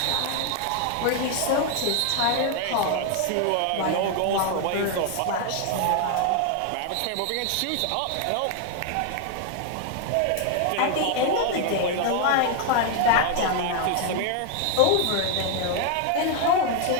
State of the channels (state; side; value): different; both; correlation 0.00